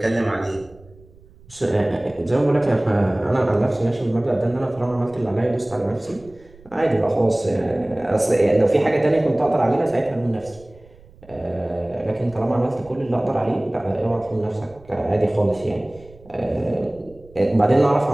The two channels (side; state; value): right; noise; rumble, 24 dB below the sound